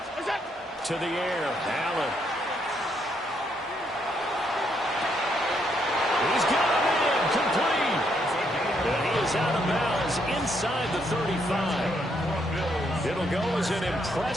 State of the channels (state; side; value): normal; both; correlation 0.74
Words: To the air, Allen. He's got him in, complete. And he is out of bounds inside the 35. It'll go as an